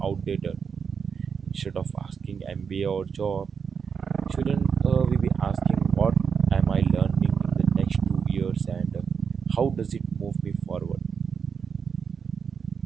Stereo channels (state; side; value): quieter; left; 6.4 dB